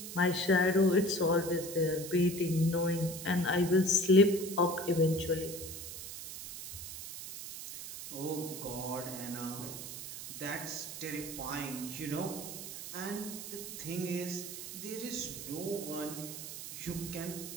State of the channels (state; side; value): noise; right; hiss, 9 dB below the sound